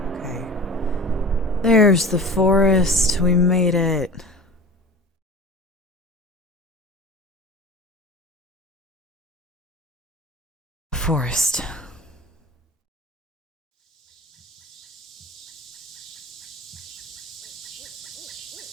Okay. There's the forest. We made it. Forest.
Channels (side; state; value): both; normal; correlation 0.36